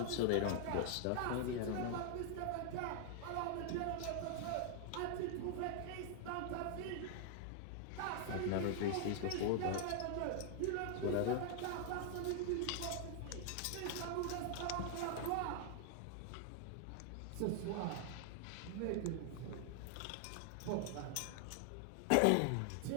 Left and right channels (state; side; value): different; both; correlation 0.00